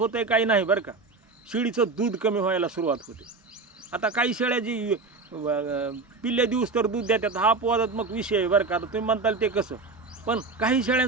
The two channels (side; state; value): left; quieter; 4.0 dB